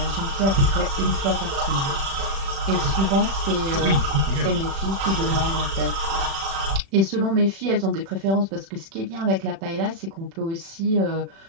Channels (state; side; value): late; left; 36 ms